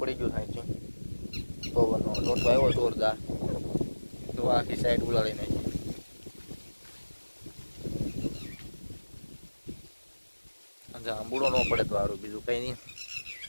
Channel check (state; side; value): inverted; both; correlation -1.00